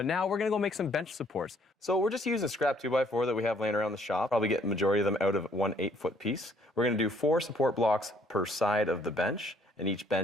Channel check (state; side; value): normal; both; correlation 0.64